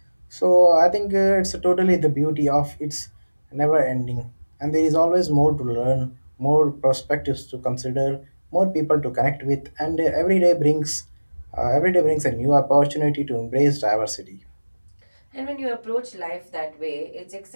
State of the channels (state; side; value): inverted; both; correlation -1.00